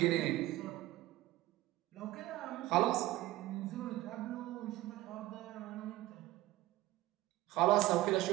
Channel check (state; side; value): quieter; left; 17.0 dB